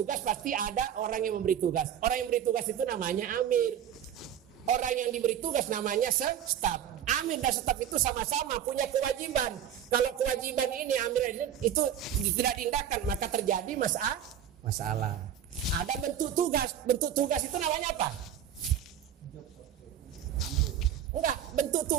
pasti ada orang yang memberi tugas. Orang yang memberi tugas itu namanya amir. Orang yang diberi tugas namanya staf. Amir dan staf itu sama-sama punya kewajiban. Kalau kewajiban ini amir itu tidak diindahkan, maka terjadi masalah. Ada bentuk tugas. Bentuk tugas itu namanya apa? Enggak, bentuk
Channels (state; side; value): quieter; left; 9.6 dB